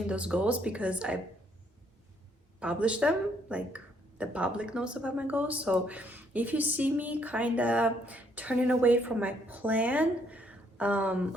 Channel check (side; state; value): both; normal; correlation 0.69